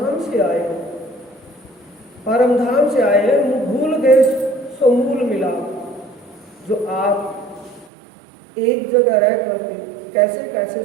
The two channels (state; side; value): drops out; left; at 7.9 s